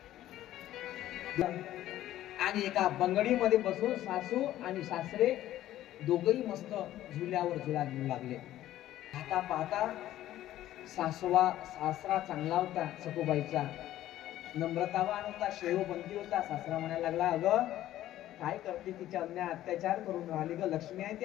आणि एका बंगडीमध्ये बसून सासू आणि सासरे दोघही मस्त झुल्यावर झुला घेऊ लागले. पाहता पाहता सासरा चांगला होता, सखूबाईचा नम्रतावान होता, शेवबंदी होता. सासरा म्हणायला लागला, अगं काय करते, तिच्या अन्याय अत्याचार करून राहिली ग, लक्ष्मी आहे ती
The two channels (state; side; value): quieter; right; 13.6 dB